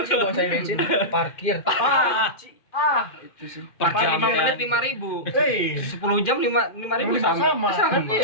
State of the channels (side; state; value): right; late; 2.1 ms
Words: sih dong saya bensin, parkir. Itu sih. Per Depan jam 5 kan. menit 5.000. 10 10 jam 5.000 sama. Kan